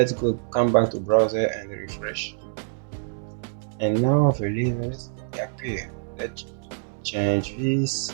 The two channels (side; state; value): left; silent; digital silence